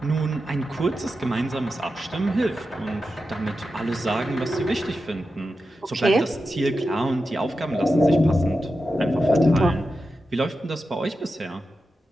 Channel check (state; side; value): normal; both; correlation 0.90